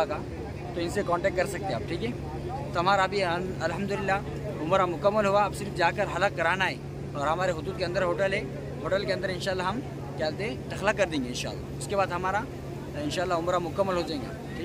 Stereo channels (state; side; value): identical; both; correlation 1.00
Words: का, तो इनसे कांटेक्ट कर सकते हैं आप, ठीक है। तो हमारा अभी अल्हम्दुलिल्लाह उम्रा मुकम्मल हुआ। अब सिर्फ जाकर हलक कराना है और हमारे हुदूद के अंदर होटल है। होटल के अंदर इंशाल्लाह हम क्या बोलते हैं टखला कर देंगे इंशाल्लाह। उसके बाद हमारा इंशाल्लाह उम्रा मुकम्मल हो जाएगा,